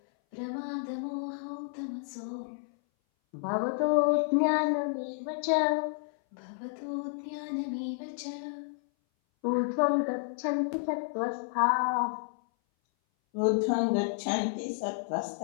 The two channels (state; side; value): silent; right; 57 dB below the other